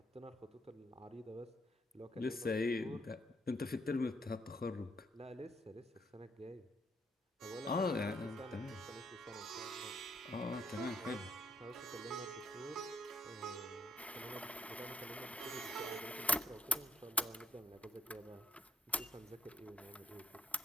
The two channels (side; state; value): both; normal; correlation 0.73